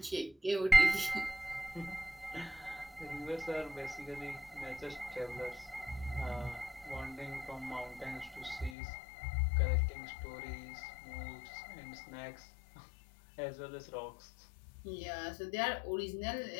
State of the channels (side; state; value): right; drops out; at 8.8 s